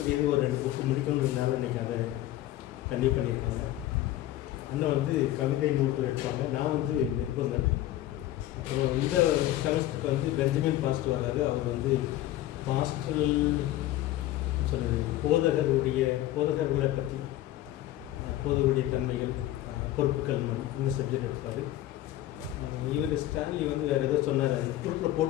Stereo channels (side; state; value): right; quieter; 14.2 dB